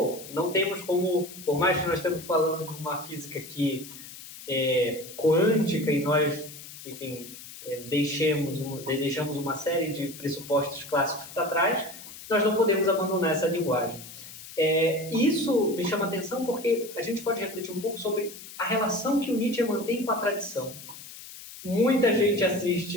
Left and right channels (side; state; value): left; noise; hiss, 15 dB below the sound